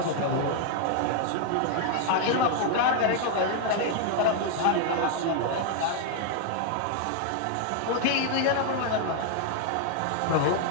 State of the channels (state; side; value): different; both; correlation 0.00